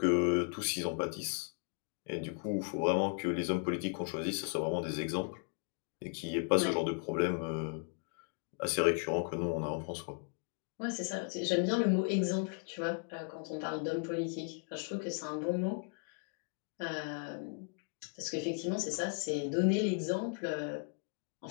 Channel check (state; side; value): quieter; right; 39.8 dB